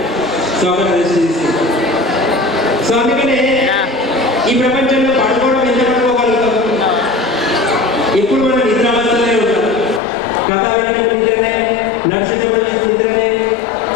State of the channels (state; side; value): drops out; right; at 10.0 s